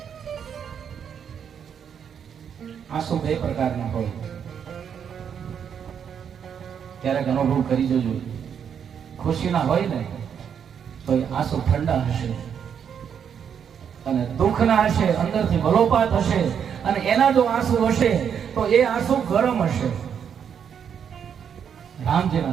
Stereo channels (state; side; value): quieter; left; 7.9 dB